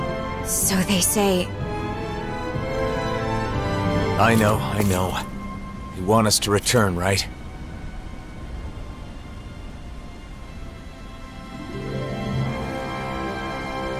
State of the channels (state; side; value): identical; both; correlation 1.00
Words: So they say... I know. You want us to return, right?